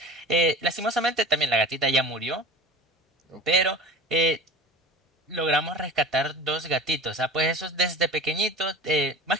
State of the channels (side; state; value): both; normal; correlation 0.35